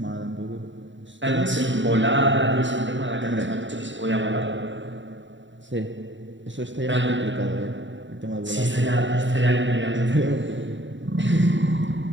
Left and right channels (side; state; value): left; late; 0.54 ms